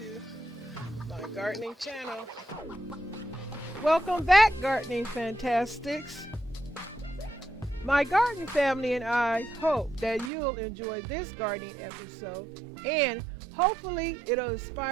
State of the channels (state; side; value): drops out; left; at 10.3 s